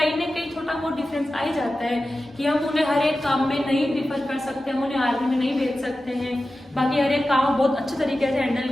ना कहीं छोटा बहुत डिफरेंस आ ही जाता है कि हम उन्हें हर एक काम में नहीं प्रीफर कर सकते, हम उन्हें आर्मी में नहीं भेज सकते हैं, बाकी हर एक काम बहुत अच्छे तरीके से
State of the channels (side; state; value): both; normal; correlation 0.94